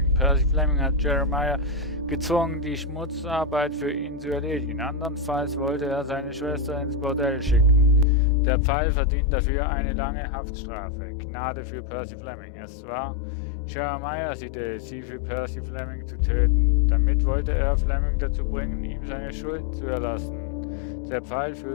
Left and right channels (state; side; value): drops out; right; at 8.1 s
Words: Percy Fleming hat Jeremiah gezwungen, die Schmutzarbeit für ihn zu erledigen. Andernfalls wollte er seine Schwester ins Bordell schicken. Der Pfeil verdient dafür eine lange Haftstrafe. Gnade für Percy Fleming. Es war Jeremiahs Idee, sie für Percy Fleming zu töten. Damit wollte er Fleming dazu bringen, ihm seine Schuld zu erlassen. Der Pfeil